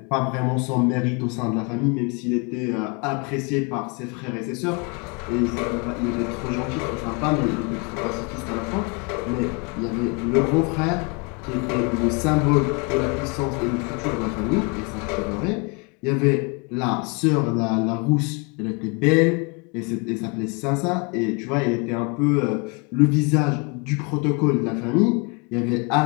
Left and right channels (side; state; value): right; quieter; 31.3 dB